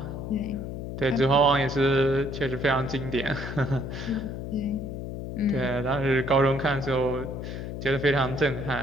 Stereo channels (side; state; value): left; noise; hum, 6 dB below the sound